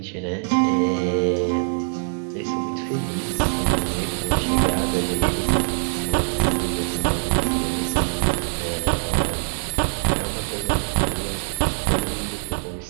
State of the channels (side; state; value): left; silent; digital silence